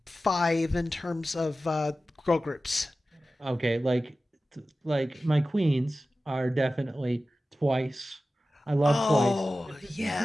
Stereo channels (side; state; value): both; normal; correlation 0.95